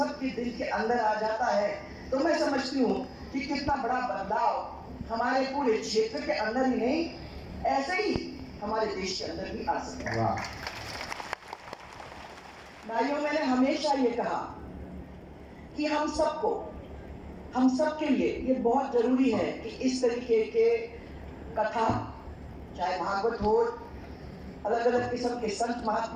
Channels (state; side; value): identical; both; correlation 1.00